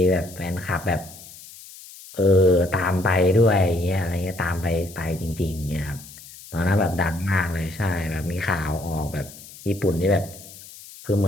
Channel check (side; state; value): left; noise; hiss, 18 dB below the sound